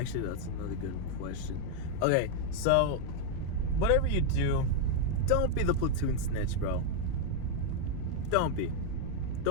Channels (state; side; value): different; both; correlation 0.00